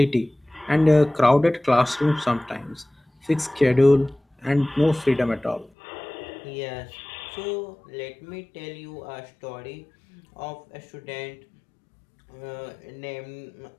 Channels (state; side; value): drops out; right; at 5.7 s